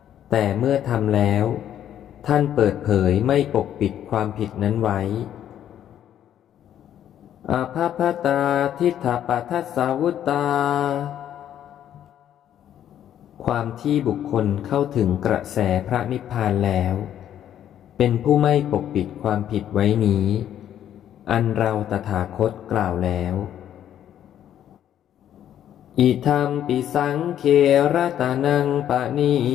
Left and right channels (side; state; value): right; quieter; 10.6 dB